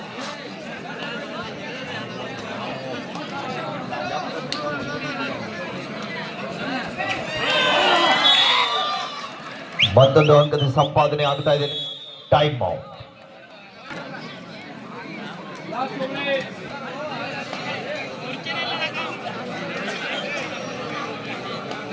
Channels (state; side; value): identical; both; correlation 1.00